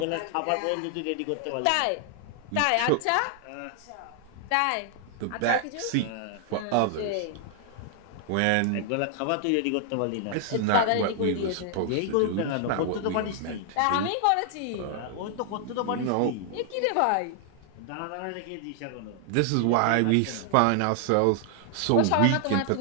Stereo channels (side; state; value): both; different; correlation 0.00